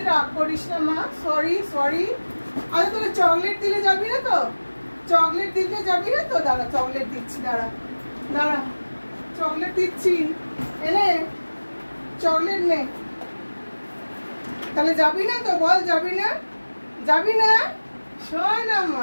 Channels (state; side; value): inverted; both; correlation -1.00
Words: রাগ করিস না মা, সরি সরি। আরে তোকে চকলেট দিলে যাবি না তো? চকলেট দিতে যাবি না তো? দাঁড়া, চকলেট দিচ্ছি, দাঁড়া দাঁড়া, চকলেট দিচ্ছি, এনে চকলেট নে। তাহলে যাবি না তো? বল যাবি না, যাবি না? শোনা